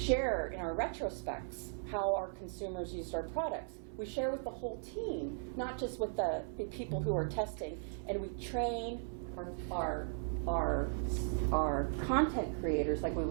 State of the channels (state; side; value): silent; left; 53 dB below the other